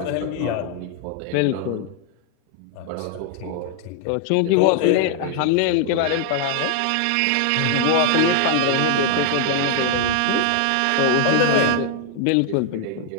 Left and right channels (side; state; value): both; different; correlation 0.00